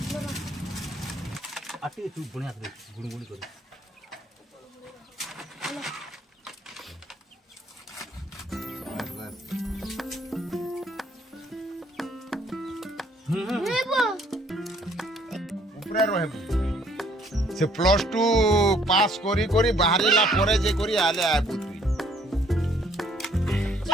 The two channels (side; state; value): both; normal; correlation 0.63